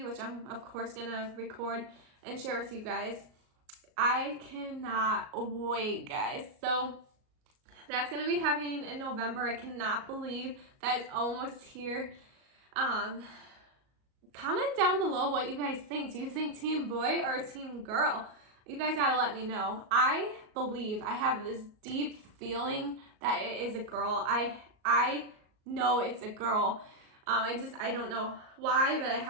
which I'm of course going to record and share with you guys. I cannot wait, guys. So that's going to be happening in November. I cannot believe that it's almost here. Comment down below what you guys think. Do you think team boy or team girl? You guys gotta let me know. I believe, I have this deep feeling that it is a girl. I know it's a girl. I don't know why, but I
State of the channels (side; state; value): left; late; 38 ms